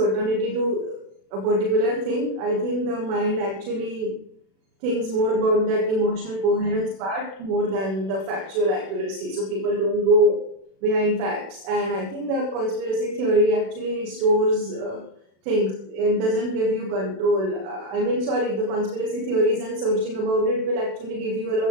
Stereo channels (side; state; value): left; late; 36 ms